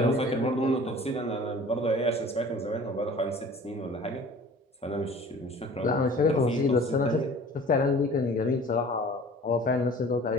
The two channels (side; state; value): both; normal; correlation 0.46